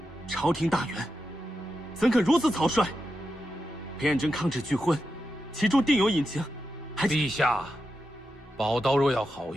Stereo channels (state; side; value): normal; both; correlation 0.88